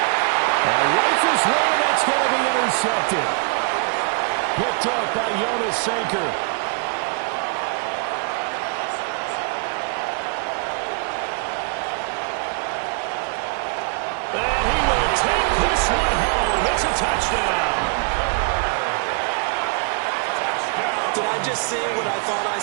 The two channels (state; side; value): quieter; left; 39.5 dB